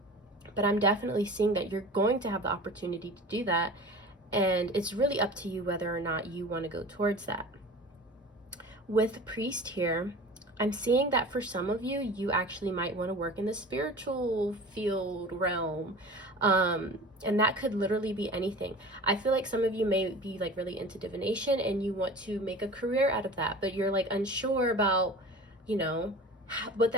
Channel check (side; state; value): both; normal; correlation 0.38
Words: But I'm definitely seeing that you're going to have the opportunity to do that. And it's really up to you whether or not you want to go towards that. With Priest here, I'm seeing that for some of you, you actually might want to work in the spiritual field realm. And that could literally be anything. I feel like some of you may be like really into divination and you want to make a career out of that, but you're like unsure about, you know, what